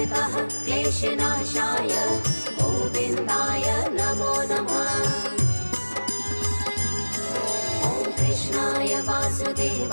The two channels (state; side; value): inverted; both; correlation -1.00